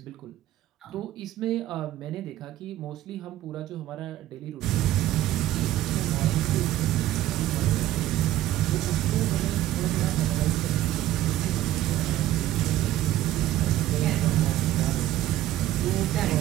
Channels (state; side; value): quieter; left; 13.8 dB